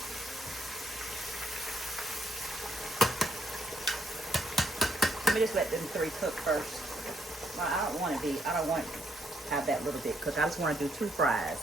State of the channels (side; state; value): both; normal; correlation 0.73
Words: Let me just let them 3 cook first. Well, I don't want to have that little bit cooked. I just want to do 2 fries.